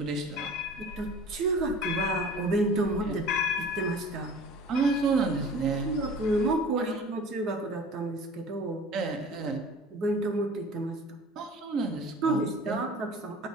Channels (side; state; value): both; normal; correlation 0.43